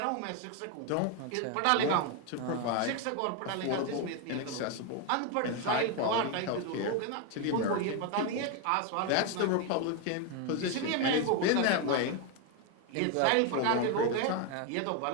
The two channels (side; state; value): both; different; correlation 0.01